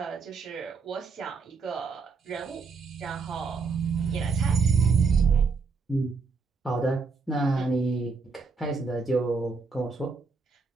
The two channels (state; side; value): quieter; left; 4.5 dB